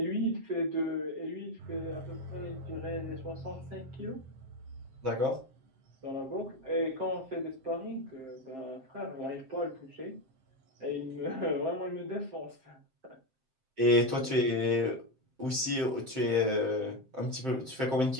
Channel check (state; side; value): late; left; 7.6 ms